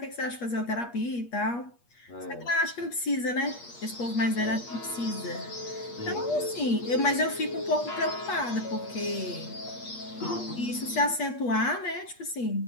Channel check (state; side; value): late; right; 8.4 ms